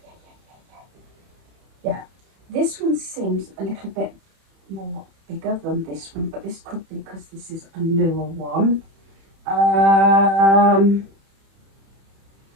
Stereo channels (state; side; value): late; left; 31 ms